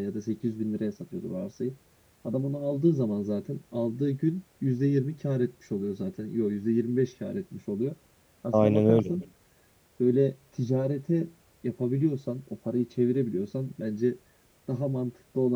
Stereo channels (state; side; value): identical; both; correlation 1.00